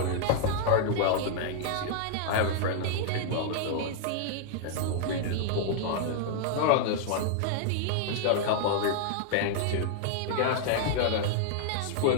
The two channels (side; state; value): both; different; correlation -0.01